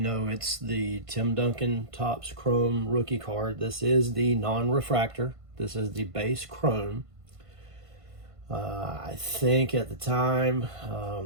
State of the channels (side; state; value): left; late; 1.5 ms